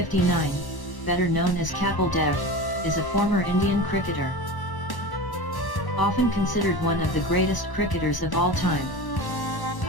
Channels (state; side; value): late; right; 1.1 ms